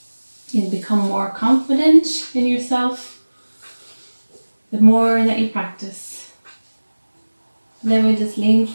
You'll become more confident in yourself the more that you practice. And then we just lean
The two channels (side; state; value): both; inverted; correlation -1.00